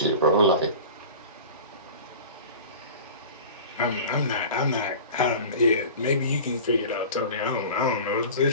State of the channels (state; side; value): inverted; both; correlation -0.37